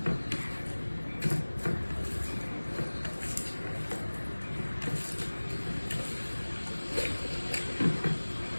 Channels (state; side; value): inverted; both; correlation -1.00